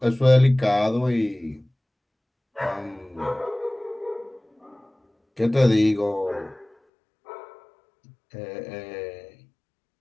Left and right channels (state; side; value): drops out; right; at 6.7 s